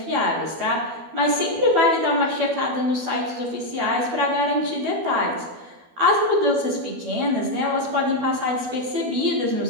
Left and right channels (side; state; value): left; late; 12 ms